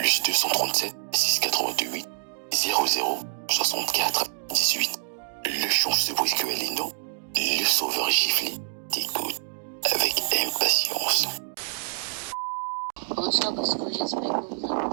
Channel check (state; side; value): silent; left; digital silence